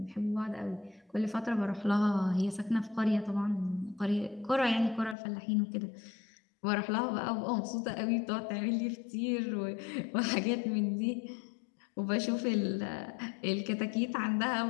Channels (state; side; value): drops out; right; at 5.2 s